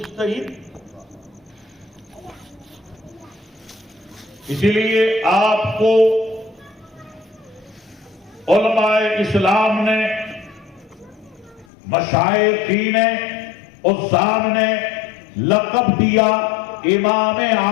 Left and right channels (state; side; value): drops out; right; at 11.7 s